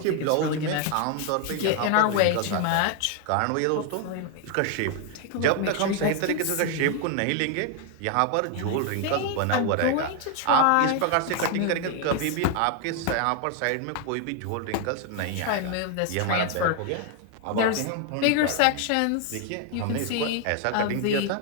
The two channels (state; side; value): different; both; correlation 0.01